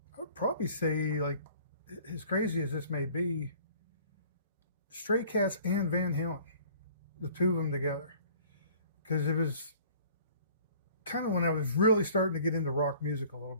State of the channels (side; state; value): both; inverted; correlation -0.52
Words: I would probably say, like, as crazy as this may be, Stray Cats and Van Halen, the two of them together. Because it was kind of when I was really starting to get into rock music a little